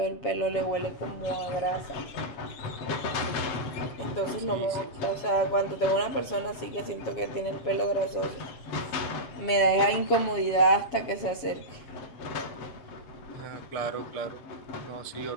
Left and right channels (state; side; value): late; right; 7.2 ms